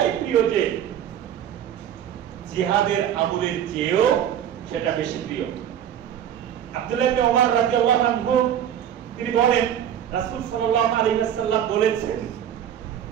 প্রিয় যে জিহাদের আমলের চেয়েও সেটা বেশি প্রিয়। আব্দুল্লাহ ইবনে ওমর রাদিয়াল্লাহু আনহু তিনি বলেন, রাসূল সাল্লাল্লাহু আলাইহি ওয়াসাল্লাম বলেছেন,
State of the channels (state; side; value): quieter; left; 9.9 dB